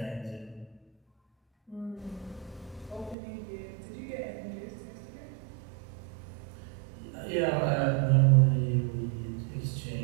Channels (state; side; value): drops out; left; at 3.2 s